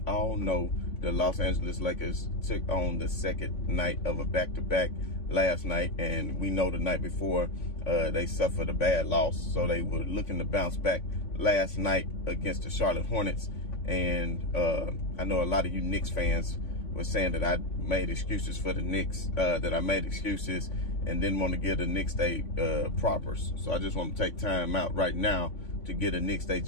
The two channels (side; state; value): right; late; 3.5 ms